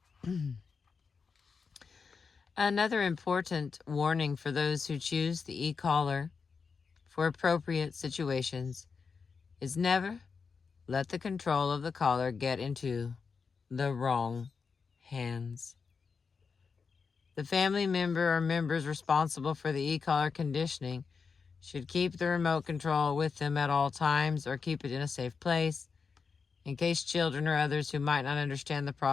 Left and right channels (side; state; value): right; quieter; 5.3 dB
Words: Another important warning for those who choose the e-collar for appropriate situations is never let the control of the collar get into the wrong hands. The family member or members responsible for the e-collar conditioning should keep the remote control with them at all times or keep it in a safe place in case children or others who might not understand the